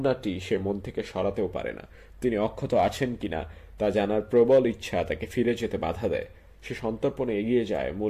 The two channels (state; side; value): identical; both; correlation 1.00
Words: সে মন থেকে সরাতেও পারে না। তিনি অক্ষত আছেন কিনা তা জানার প্রবল ইচ্ছা তাকে ফিরে যেতে বাধা দেয়। সে সন্তর্পণে এগিয়ে যায়